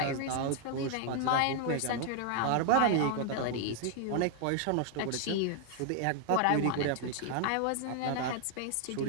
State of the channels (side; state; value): both; different; correlation 0.00